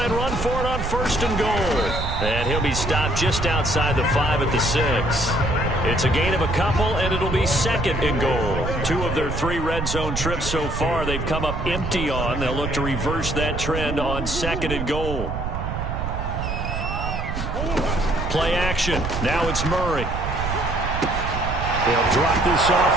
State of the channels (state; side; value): noise; right; rumble, 4 dB below the sound